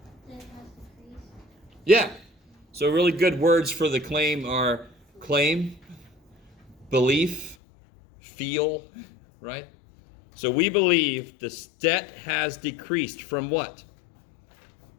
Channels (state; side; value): drops out; right; at 7.6 s